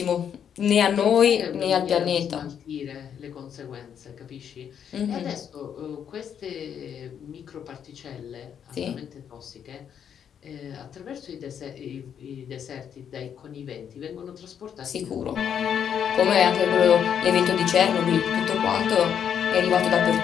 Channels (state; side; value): quieter; right; 8.4 dB